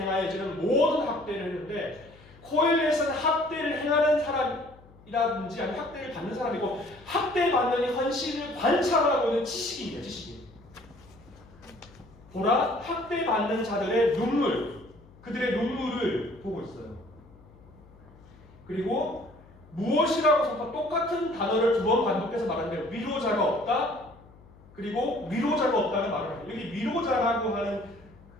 모든 학대를 했는데, 코엘렛은 학대를 행하는 사람이라든지 아니면 학대를 받는 사람이고, 학대받는 현실을 관찰하고 있는 지식인이에요. 지식인. 보라, 학대받는 자들의 눈물, 그들의 눈물을 보고 있어요. 그리고 무엇이라고 선포, 똑같은 단어를 두 번 반복해서 말하는데 위로자가 없다. 그리고 위로자가 없다는 말을 해요. 여기 위로자라고 하는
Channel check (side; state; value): left; noise; hum, 24 dB below the sound